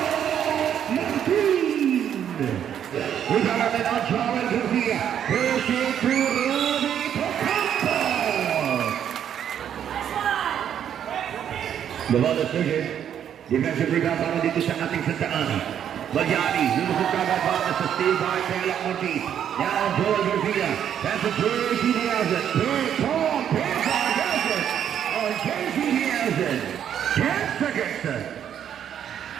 Martin. We got a man on Charlie Garcia. Pushing through Ruby Ocampo. Bawal decision. Defensive rebound para dito sa ating Sta.Ana. Magyari, lulusog kagad para sa steal by Pelak Ortiz. Now Joel Garcia. That's a JC Nielsen. Third Tom Pizar has it. On JC Nielsen. 10 seconds.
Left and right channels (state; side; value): quieter; left; 9.4 dB